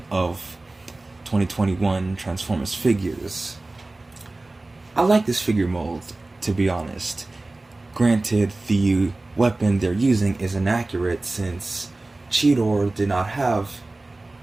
of 2021 Transformers figures. I like this figure mold, to be honest. Granted, the weapon they're using is inaccurate since Cheetor did not have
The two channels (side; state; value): left; quieter; 3.0 dB